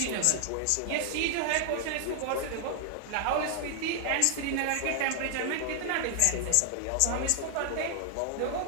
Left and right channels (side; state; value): both; different; correlation -0.01